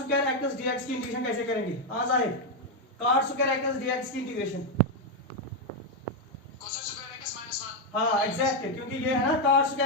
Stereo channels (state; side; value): normal; both; correlation 0.03